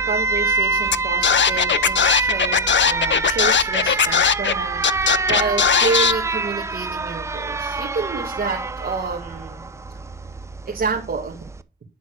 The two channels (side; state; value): both; normal; correlation 0.00